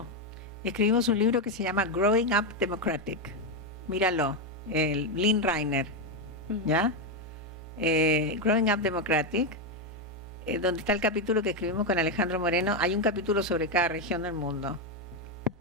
Escribimos un libro que se llama Growing Up Democratic. Míralo, el Lynn Reiner, ¿ya? Growing Up Democratic, donde está el capítulo que escribimos con Alejandro Moreno. Hay un capítulo sobre cada región del mundo.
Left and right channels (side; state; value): both; normal; correlation 0.06